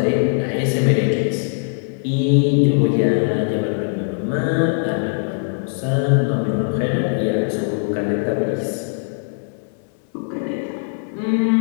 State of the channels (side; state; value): right; silent; digital silence